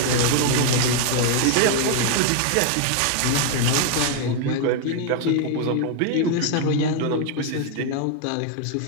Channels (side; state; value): both; different; correlation 0.00